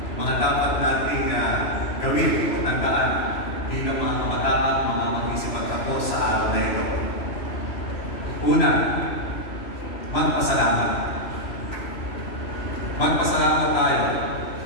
mga dapat nating gawin o tandaan bilang mga kabataan, mga mag-isipagtapos sa araw na ito? Una, magpasalamat. Magpasalamat tayo.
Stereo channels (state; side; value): late; right; 3.0 ms